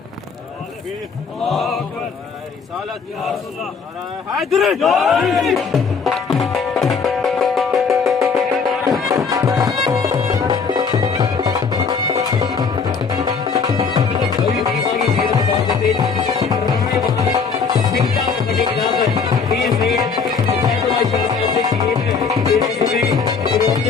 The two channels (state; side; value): quieter; right; 5.5 dB